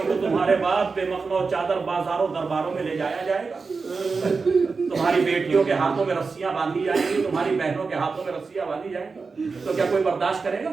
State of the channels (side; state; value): left; quieter; 4.6 dB